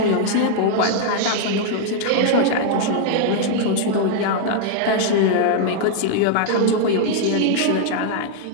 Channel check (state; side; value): different; both; correlation 0.00